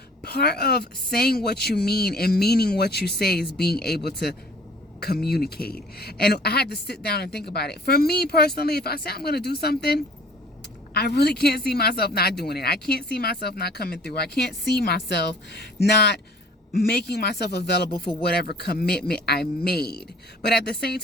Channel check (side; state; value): both; normal; correlation 0.51